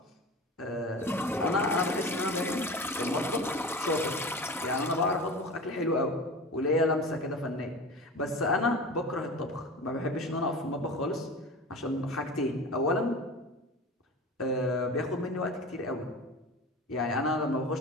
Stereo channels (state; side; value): normal; both; correlation 0.33